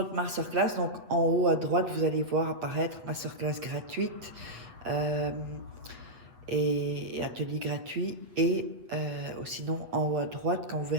masterclass, donc en haut à droite vous allez voir apparaître masterclass gratuite. Et atelier gratuit et sinon en haut à droite quand vous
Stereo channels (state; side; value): late; left; 7.9 ms